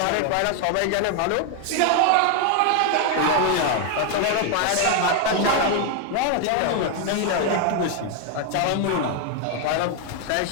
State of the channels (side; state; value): both; different; correlation 0.01